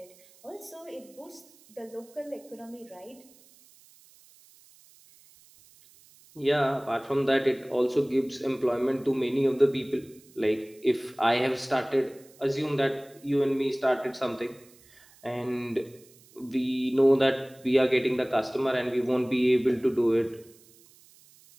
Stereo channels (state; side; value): noise; right; hiss, 27 dB below the sound